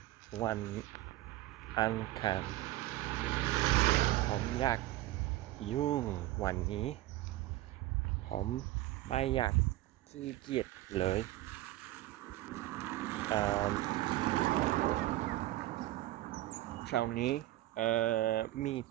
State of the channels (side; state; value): left; quieter; 16.3 dB